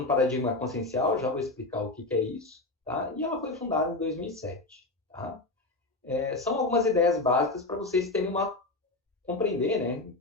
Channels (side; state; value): right; quieter; 3.0 dB